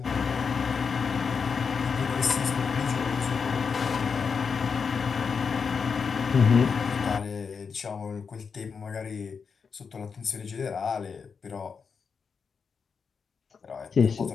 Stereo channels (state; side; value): quieter; right; 5.8 dB